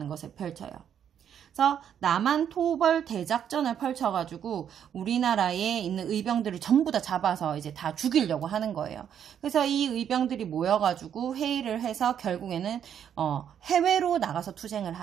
것을 펼쳐요. 그래서 남한 토벌 대작전을 펼쳐가지고 우리나라에 있는 의병들을 전부 다 잡아서 이제 다 죽이려고 하는 거예요. 그래서 이 의병들이 모여가지고 회의를 해서 결국에는 해외로 나가서 투쟁을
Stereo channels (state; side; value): quieter; left; 9.0 dB